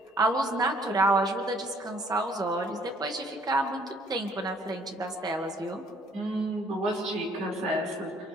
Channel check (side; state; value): both; normal; correlation 0.61